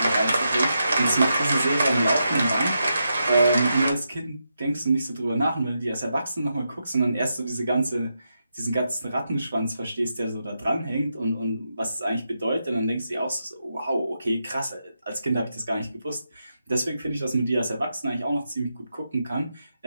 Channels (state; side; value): inverted; both; correlation -0.85